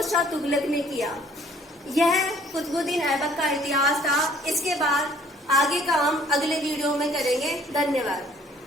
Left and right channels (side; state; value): both; normal; correlation 0.58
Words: शाह तुगलक ने किया। यह कुतुबुद्दीन ऐबक का इतिहास था। इसके बाद आगे का हम अगले वीडियो में करेंगे। धन्यवाद।